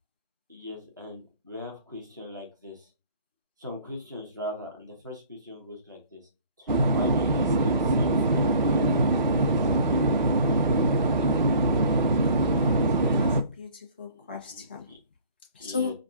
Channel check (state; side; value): inverted; both; correlation -0.51